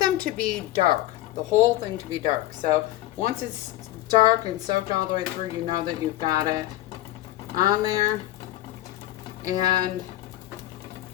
to be dark, the whole thing to be dark. So once it's dark and soaked all the way through, you know that you've got it on there. And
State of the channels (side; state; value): right; quieter; 15.7 dB